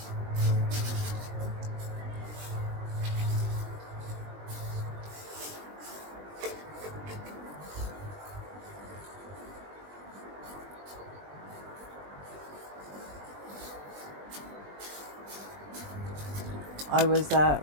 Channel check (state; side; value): late; left; 20 ms